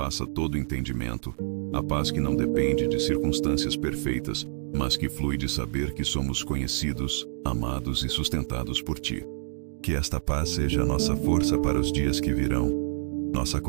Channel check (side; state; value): left; silent; digital silence